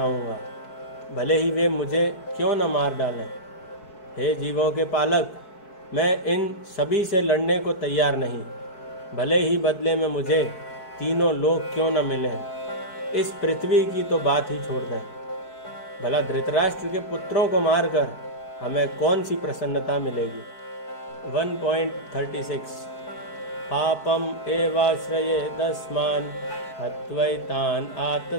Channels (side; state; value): right; late; 4.6 ms